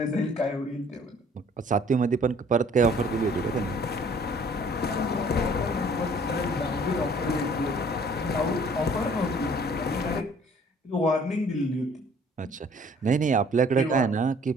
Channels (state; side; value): normal; both; correlation 0.56